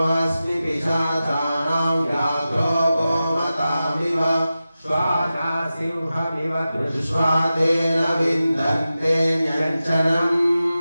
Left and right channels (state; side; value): inverted; both; correlation -0.94